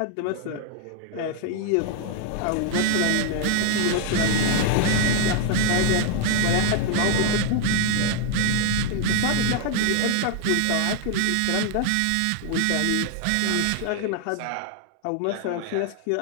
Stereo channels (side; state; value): both; different; correlation 0.00